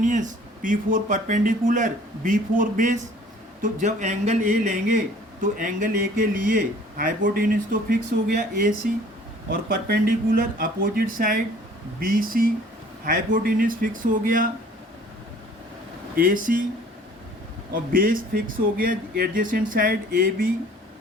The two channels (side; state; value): both; normal; correlation 0.52